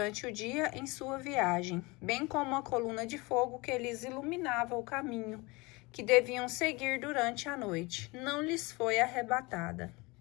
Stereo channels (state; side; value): quieter; right; 25.0 dB